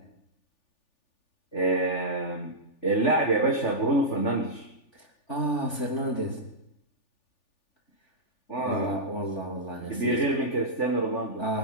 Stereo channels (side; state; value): right; late; 3.4 ms